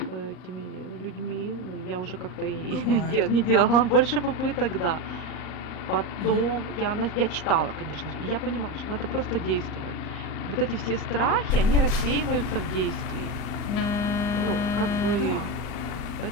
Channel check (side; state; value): right; late; 39 ms